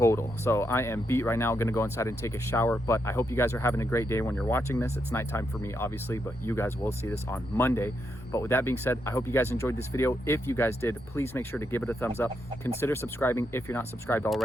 So I am beat right now. I'm gonna go inside and take a shower, but I hope you guys are having a great day when you're watching this. It's nighttime for me, obviously, but you guys will see this on Monday. But with that being said, I hope you guys enjoyed this video. If you guys did, please make sure to give it a thumbs up. Consider subscribing if you're not subscribed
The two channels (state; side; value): normal; both; correlation 0.81